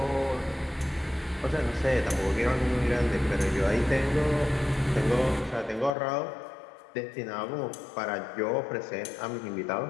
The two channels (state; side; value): drops out; right; at 6.0 s